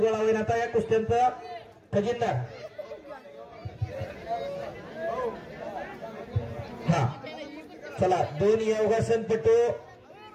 होईल. आता या कुस्त्यांचा खजिनदार. हा चला 2 योगासन पटू.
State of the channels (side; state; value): both; identical; correlation 1.00